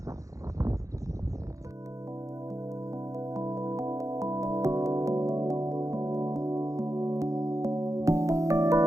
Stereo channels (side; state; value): left; late; 0.16 ms